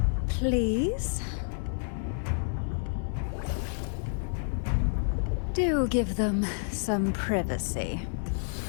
Please? Do give them some privacy.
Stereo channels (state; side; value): silent; right; 58 dB below the other